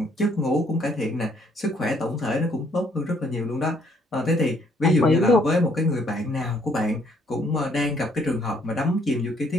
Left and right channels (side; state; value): both; normal; correlation 0.66